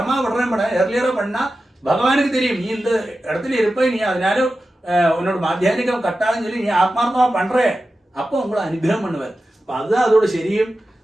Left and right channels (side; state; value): both; normal; correlation 0.93